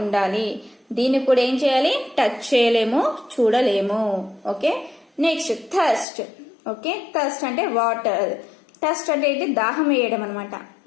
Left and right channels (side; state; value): right; drops out; at 6.1 s